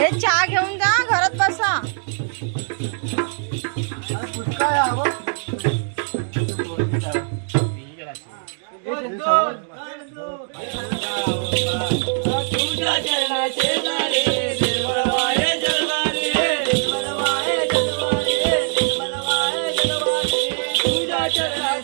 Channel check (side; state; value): left; silent; digital silence